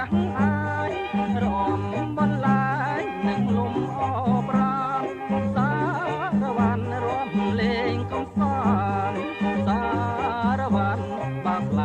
ក់អាយរំបន្លាយនឹងលំអប្រាណសារវ៉ាន់រំលេងកំសាន្តសារវ៉ាន់បាក់ឡ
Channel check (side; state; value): both; identical; correlation 1.00